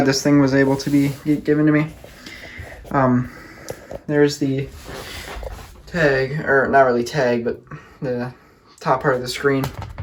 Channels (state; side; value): identical; both; correlation 1.00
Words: this thing was able to be given to me. There's the tag, or not really tag, but the top part of the screen.